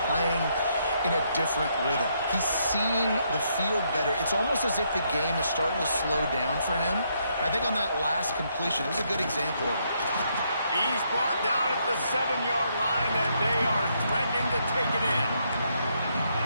playing in a different rhythm. He's seeing the field better. It's almost as if the game is starting to slow down for him. I think on that last completion, it was a good example of it. He's brought down at the 7-yard line, and they are threatening to take it in.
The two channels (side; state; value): both; inverted; correlation -0.75